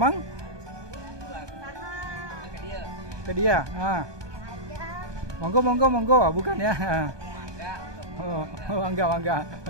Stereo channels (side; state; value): left; late; 1.2 ms